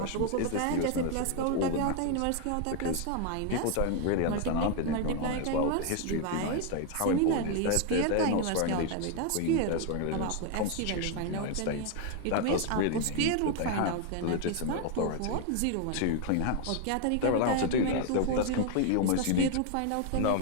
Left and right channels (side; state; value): both; different; correlation 0.01